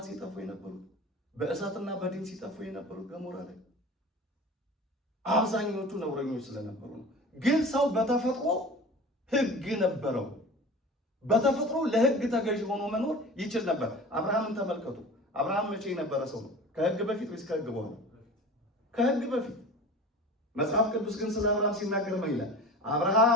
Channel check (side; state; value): both; normal; correlation 0.38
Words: ሲጠፉ የነበሩት፣ በእሳትና በዲን ሲጠፉ የነበሩት ገሞራ ላይ አብዛኞቹ ነውረኞች ስለነበሩ ነው። ግን ሰው በተፈጥሮ ሕግ ነበረው። በተፈጥሮ ለሕግ ተገዥ ሆኖ መኖር ይችል ነበር። አብርሃምን ተመልከቱ። አብርሃም መቼ የነበረ ሰው ነው? ከሕግ በፊት ወይስ ከሕግ በኋላ? ከሕግ በፊት። መጽሐፍ ቅዱስ ግን ስለ አብርሃም ሲናገር ምን ይላል?